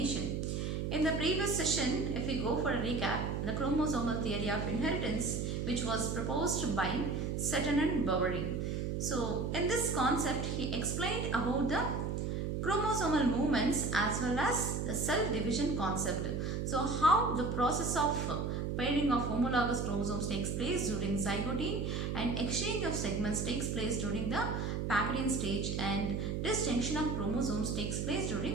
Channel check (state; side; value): noise; right; hum, 1 dB below the sound